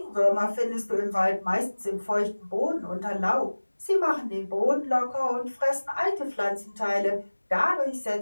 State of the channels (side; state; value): both; inverted; correlation -1.00